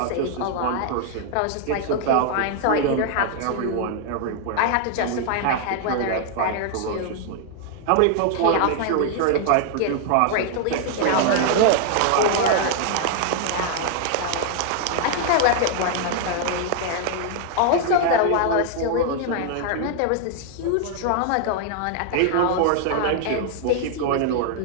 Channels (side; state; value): both; different; correlation 0.00